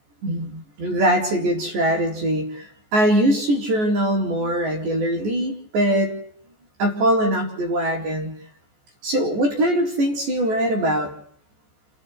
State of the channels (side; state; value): left; late; 14 ms